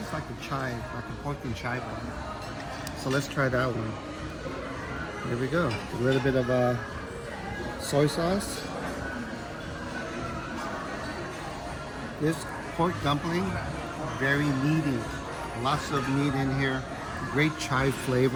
like a chive, like a pork and chive one. So let's try that one. Here we go. A little bit of soy sauce. This pork dumpling, very meaty. Lots of meat in here. Great chive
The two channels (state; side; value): identical; both; correlation 1.00